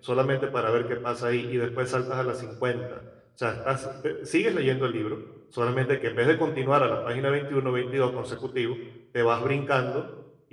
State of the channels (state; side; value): identical; both; correlation 1.00